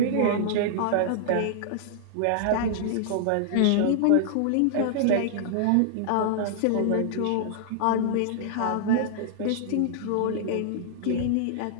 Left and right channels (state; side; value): different; both; correlation -0.01